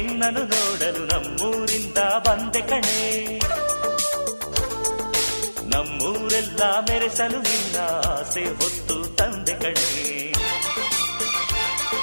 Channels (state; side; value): inverted; both; correlation -1.00